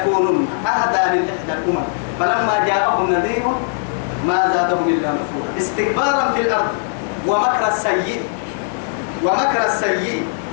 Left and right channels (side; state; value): right; silent; digital silence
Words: أهدى من إحدى الأمم فلما جاءهم نذير ما زادهم إلا نفورا استكبارا في الأرض ومكر السيء